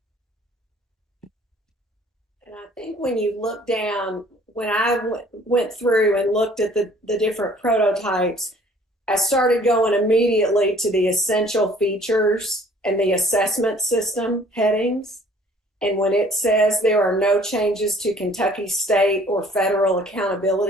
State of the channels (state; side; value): normal; both; correlation 0.55